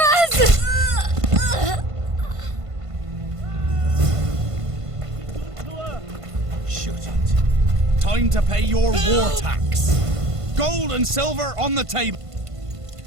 Shut it. Time to pay your war tax. Gold and silver on the table.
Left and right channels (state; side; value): late; left; 1.5 ms